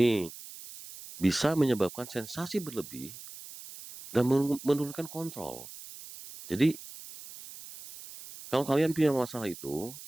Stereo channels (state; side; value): noise; right; hiss, 15 dB below the sound